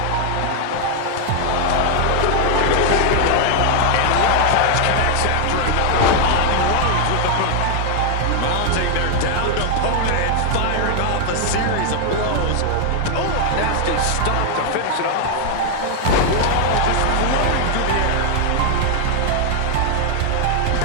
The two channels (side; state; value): both; different; correlation 0.00